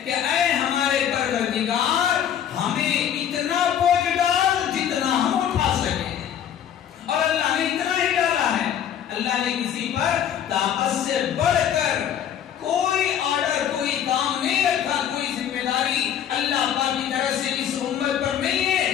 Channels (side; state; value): right; quieter; 9.6 dB